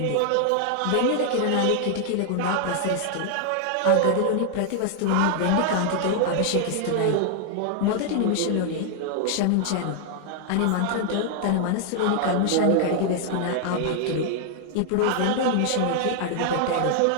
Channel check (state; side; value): different; both; correlation 0.00